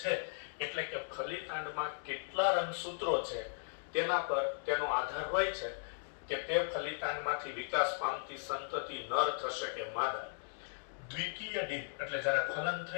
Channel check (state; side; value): silent; right; digital silence